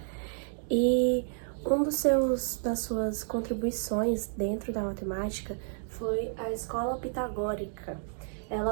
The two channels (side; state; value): left; silent; digital silence